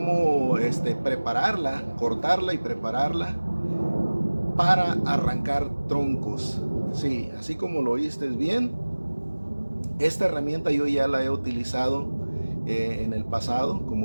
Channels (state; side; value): inverted; both; correlation -1.00